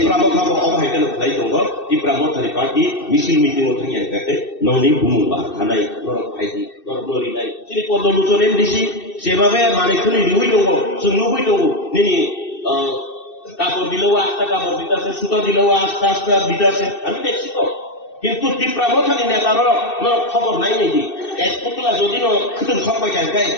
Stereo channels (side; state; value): right; late; 2.6 ms